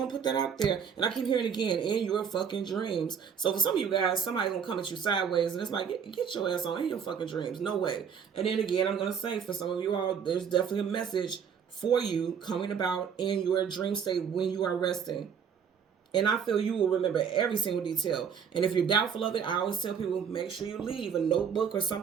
to put that out there. And I keep hearing again, in your fucking dreams. So for some of you guys, somebody's going to come at you sideways, and it's like, get your ass on in your fucking dreams. No way. And then again, I'm going to say, for some of you all, there's definitely a message for you coming about in your dream state when you are resting. And I feel you will remember every single detail. And if you're doubtful of it, I always tell people, make sure you leave a notebook or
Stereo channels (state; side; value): quieter; left; 7.2 dB